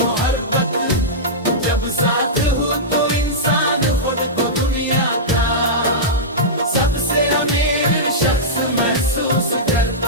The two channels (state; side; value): normal; both; correlation -0.13